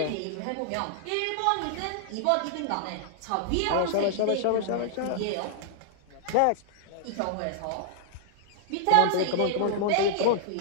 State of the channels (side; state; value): both; different; correlation -0.01